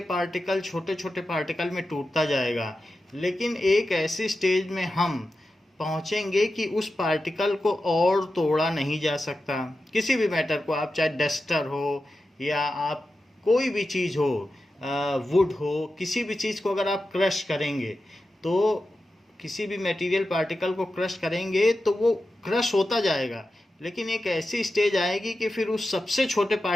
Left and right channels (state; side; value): normal; both; correlation 0.92